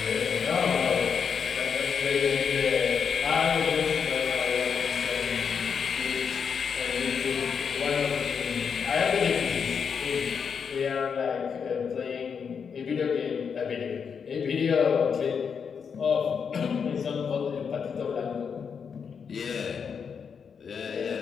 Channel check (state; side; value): quieter; right; 6.5 dB